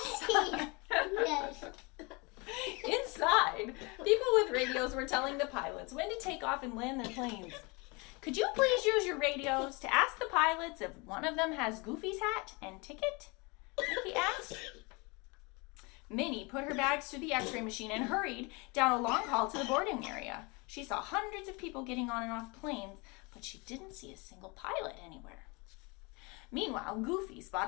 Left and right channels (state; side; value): quieter; right; 28.2 dB